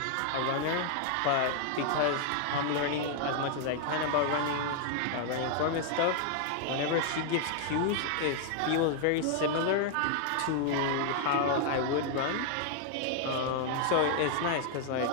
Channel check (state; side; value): different; both; correlation 0.00